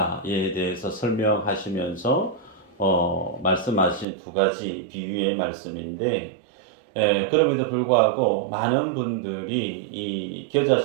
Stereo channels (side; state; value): left; drops out; at 4.0 s